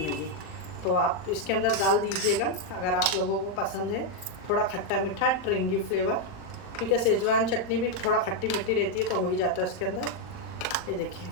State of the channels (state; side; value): late; right; 39 ms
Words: नहीं है। तो आप इसके अंदर डाल दीजिएगा अगर आप लोगों को पसंद है थोड़ा खट्टा मीठा ट्रिंगी फ्लेवर, क्योंकि शेजवान चटनी भी थोड़ा खट्टी मिट्टी रहती है तो हो ही जाता है इसके अंदर। ये देखिए